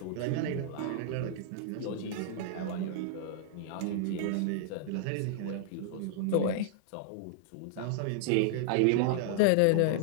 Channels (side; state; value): both; different; correlation -0.01